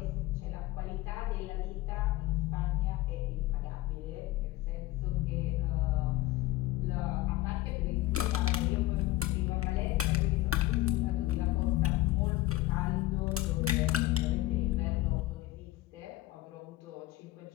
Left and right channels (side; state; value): right; quieter; 17.4 dB